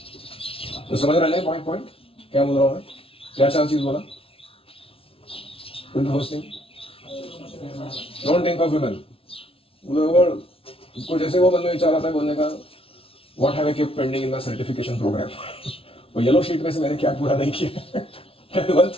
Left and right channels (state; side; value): late; right; 0.26 ms